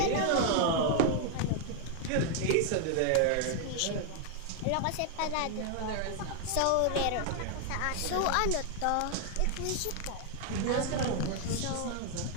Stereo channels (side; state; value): both; different; correlation 0.00